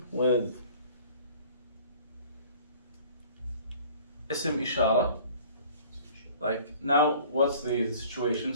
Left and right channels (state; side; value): inverted; both; correlation -0.49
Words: with ism ishara. Like now, what's the situation